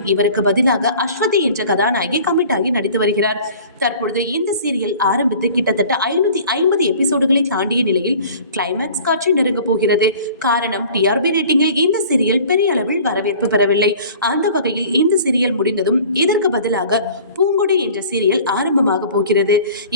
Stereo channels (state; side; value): inverted; both; correlation -0.46